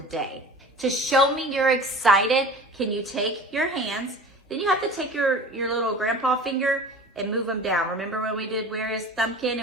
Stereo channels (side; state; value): both; normal; correlation 0.40